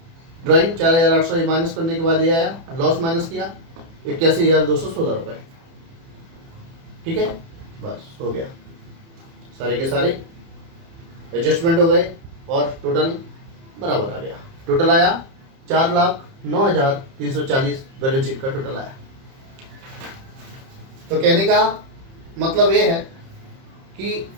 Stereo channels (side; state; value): left; late; 30 ms